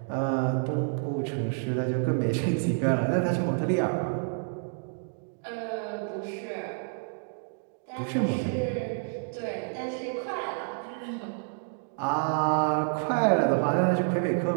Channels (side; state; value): left; silent; digital silence